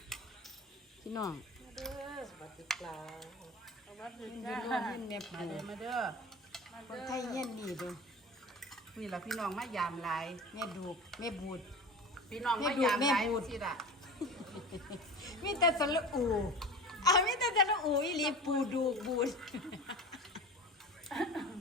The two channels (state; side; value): normal; both; correlation 0.33